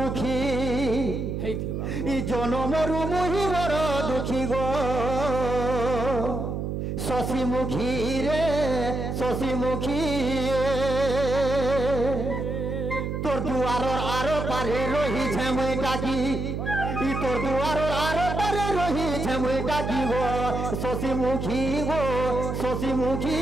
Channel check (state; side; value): noise; right; hum, 3 dB below the sound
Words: হেইথিবা ই জনমরু মুহি বড় দুঃখী গো শশীমুখী রে শশীমুখী তোর দুয়ারর আরো পারে রহিছে মই টাকি ই তোর দুয়ারর আরো পারে রহিছে মই টাকি গো শশীমুখী গো শশীমুখী